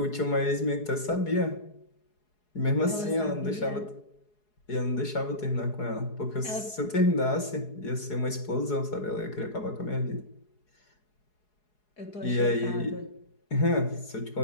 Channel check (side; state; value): right; late; 4.8 ms